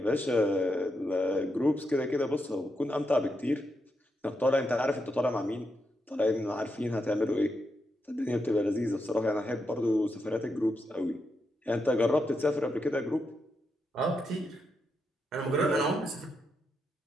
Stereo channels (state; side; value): normal; both; correlation 0.83